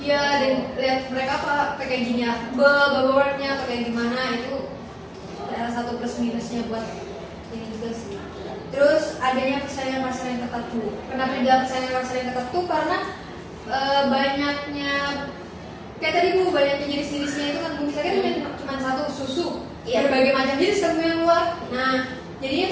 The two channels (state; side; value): identical; both; correlation 1.00